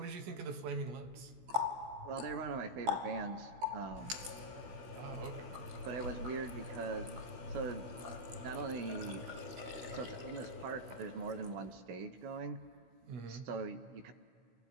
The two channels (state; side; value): late; left; 16 ms